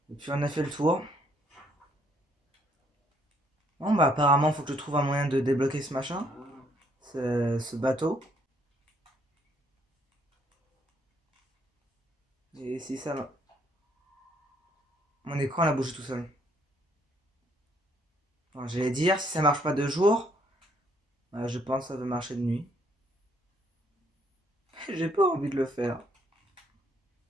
Et puis on a fait le tour. Bon, bah, apparemment, faut que je trouve un moyen de débloquer ce machin. Ce bateau. Et si ça. Mon écran, il a bougé tout seul. Alors, j'allais dire, si ça marche pas de jour, bah, je pense que ça va marcher de nuit. J'ai pas envie de le faire.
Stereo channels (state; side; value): normal; both; correlation 0.67